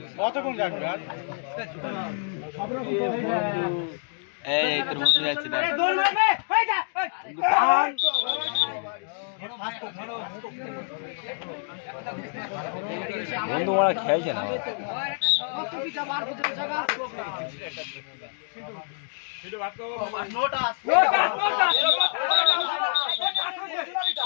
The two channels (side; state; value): right; silent; 60 dB below the other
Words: কতক্ষণ যাবে আর এই তোর বন্ধু যাচ্ছে দেখ দৌড় মারবে হই যা বন্ধু ওরা খেলছে না